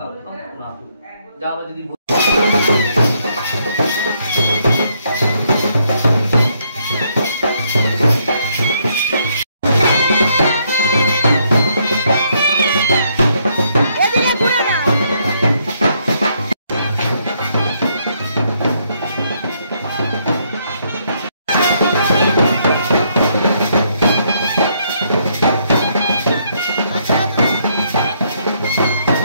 পুনাতু। যা আমরা যদি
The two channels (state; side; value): inverted; both; correlation -0.73